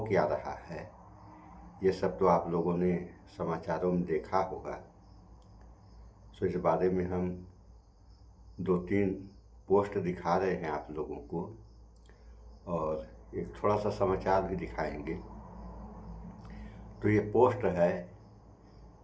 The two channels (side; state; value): both; identical; correlation 1.00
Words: क्या रहा है ये सब तो आप लोगों ने समाचारों में देखा होगा। सो इस बारे में हम 2-3 पोस्ट दिखा रहे हैं आप लोगों को और एक थोड़ा सा समाचार भी दिखाएंगे। तो ये पोस्ट है,